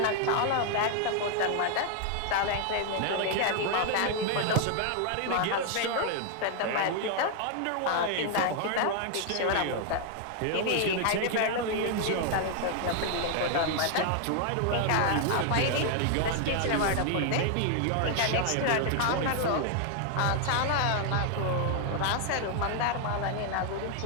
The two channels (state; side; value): different; both; correlation 0.00